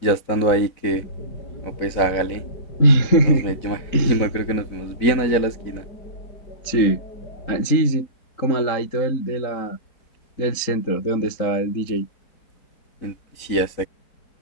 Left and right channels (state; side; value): late; right; 3.8 ms